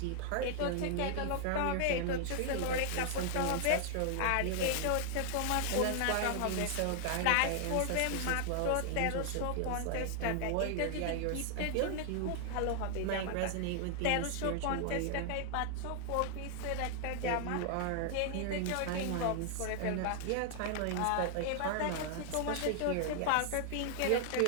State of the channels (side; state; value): both; different; correlation 0.00